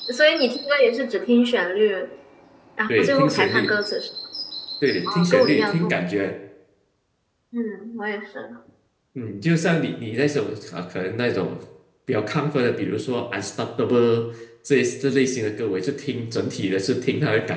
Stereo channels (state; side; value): identical; both; correlation 1.00